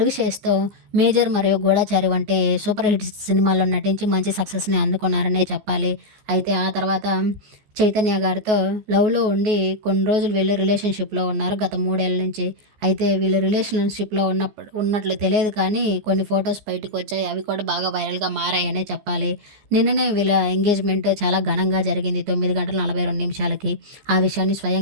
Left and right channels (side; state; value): left; late; 14 ms